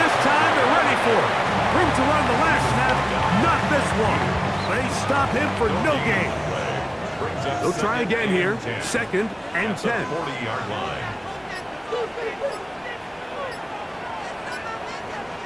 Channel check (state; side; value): identical; both; correlation 1.00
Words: time they're ready for it. Room to run the last snap, not this one. They stop him for no gain. They'll try again here, 2nd and 10. 40-yard line.